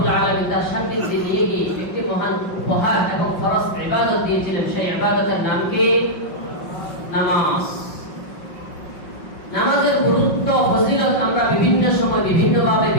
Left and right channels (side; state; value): right; late; 5.6 ms